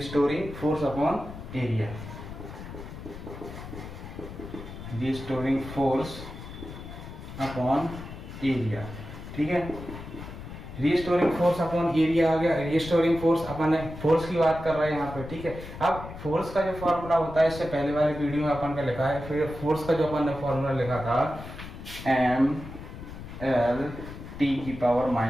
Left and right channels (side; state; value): left; noise; rumble, 12 dB below the sound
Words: force upon area, restoring force upon area, ठीक है। रिस्टोरिंग फोर्स अपॉन एरिया आ गया। रिस्टोरिंग फोर्स अपन फोर्स की बात कर रहे हैं यहाँ पे, ठीक है। अब फोर्स का जो फॉर्मूला होता है इससे पहले वाले वीडियो में अपन का लिखा है, फिर फोर्स का जो अपन ने फॉर्मूला लिखा था एम एल टी की पावर